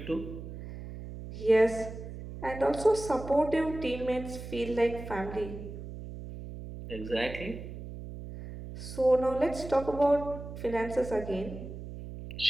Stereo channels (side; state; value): right; noise; hum, 10 dB below the sound